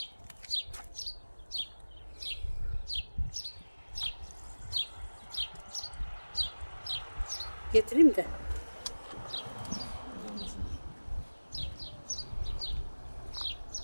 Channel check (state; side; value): inverted; both; correlation -1.00